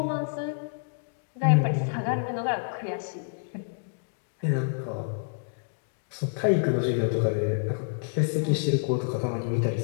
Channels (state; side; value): silent; right; digital silence